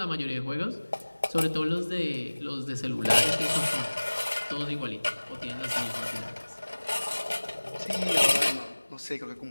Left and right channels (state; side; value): inverted; both; correlation -1.00